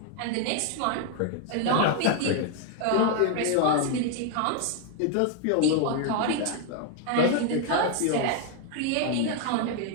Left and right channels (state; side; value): different; both; correlation 0.01